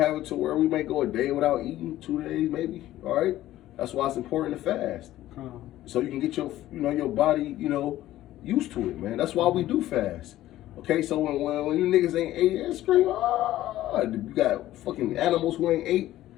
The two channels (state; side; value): quieter; right; 14.4 dB